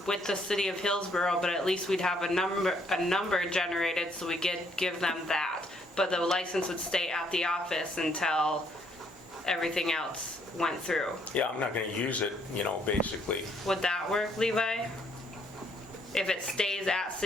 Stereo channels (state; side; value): normal; both; correlation 0.68